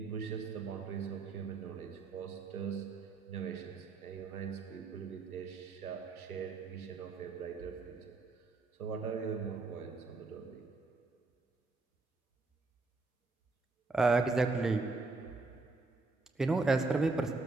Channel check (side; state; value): left; quieter; 3.7 dB